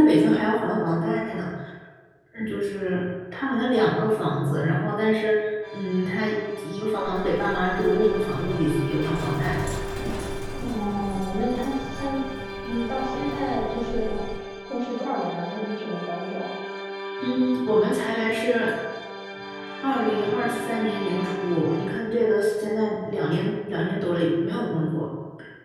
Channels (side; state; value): both; identical; correlation 1.00